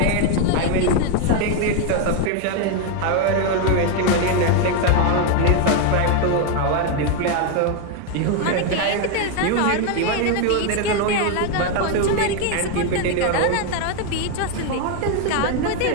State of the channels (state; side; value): different; both; correlation 0.01